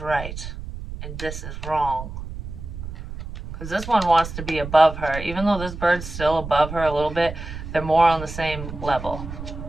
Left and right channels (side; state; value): right; noise; rumble, 9 dB below the sound